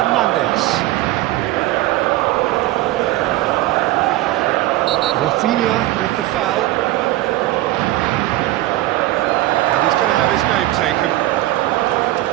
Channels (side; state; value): left; quieter; 16.7 dB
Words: Rafinha with the foul. He's going to have his name taken.